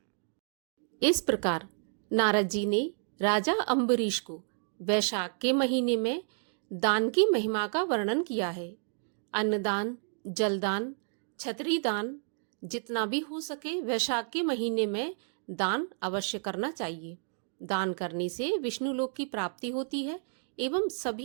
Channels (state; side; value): silent; left; 55 dB below the other